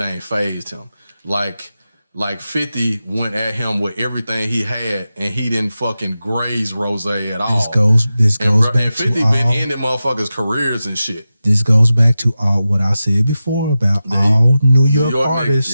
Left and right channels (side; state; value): both; inverted; correlation -0.93